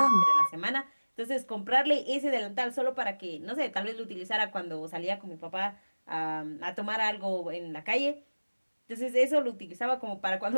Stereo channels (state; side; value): inverted; both; correlation -1.00